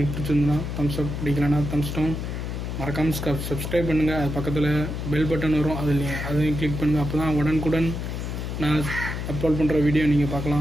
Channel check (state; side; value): noise; left; hum, 4 dB below the sound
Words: பிடிச்சிருந்தா தம்ஸ் அப், பிடிக்கலன்னா தம்ஸ் டவுன். மறக்காமல் சப்ஸ்கிரைப் பண்ணுங்கள். அது பக்கத்தில் பெல் பட்டன் வரும், அதையும் கிளிக் பண்ணுங்கள். அப்போ தான் உடனுக்குடன் நான் அப்லோட் பண்ணுற வீடியோ நீங்கள்